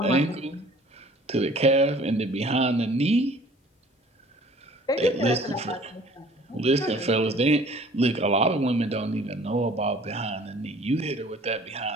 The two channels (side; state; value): both; normal; correlation 0.51